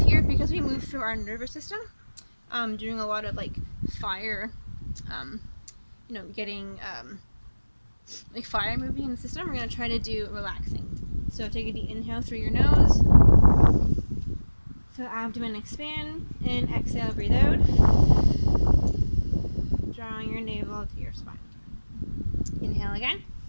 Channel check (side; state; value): both; inverted; correlation -1.00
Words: here, because we move through our nervous system, doing a lot of like fire, getting like fire moving in the system. We're going to try to do relaxing. So take a deep inhale through your nose. So abdomen expand, and exhale, breathe out. Drawing your navel to your spine. Inhale again.